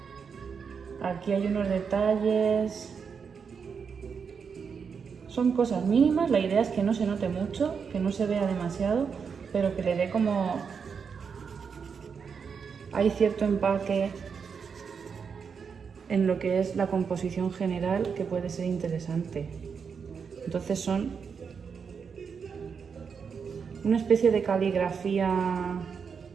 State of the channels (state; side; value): quieter; left; 6.2 dB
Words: aquí hay unos detalles. Son cosas mínimas, la idea es que no se note mucho, que no se vea demasiado, pero que le dé como... Hay cierto empaque en lo que es la composición general que puede ser interesante. Entonces son una especie de caligrafía